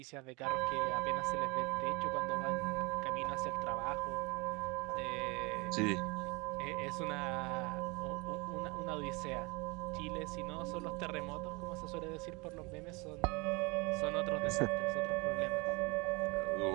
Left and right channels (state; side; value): quieter; left; 26.9 dB